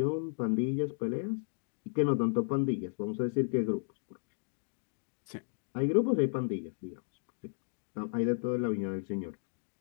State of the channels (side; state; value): right; silent; digital silence